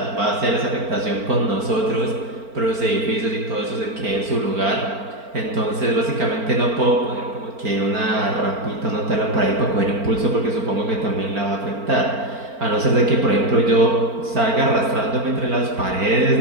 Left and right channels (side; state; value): left; late; 4.4 ms